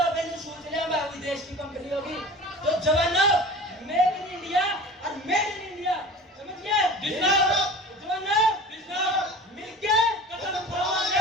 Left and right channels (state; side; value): normal; both; correlation 0.37